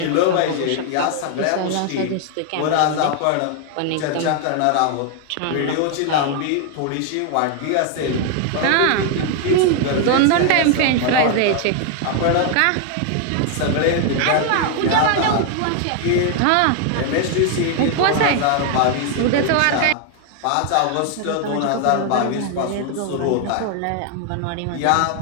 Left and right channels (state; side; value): different; both; correlation 0.00